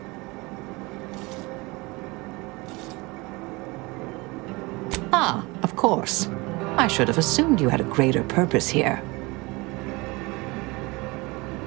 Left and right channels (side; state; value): left; quieter; 24.4 dB